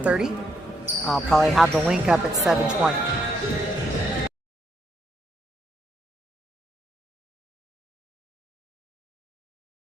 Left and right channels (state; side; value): normal; both; correlation 0.76